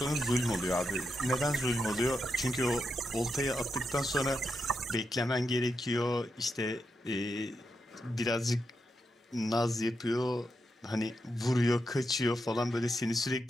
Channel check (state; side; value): normal; both; correlation 0.84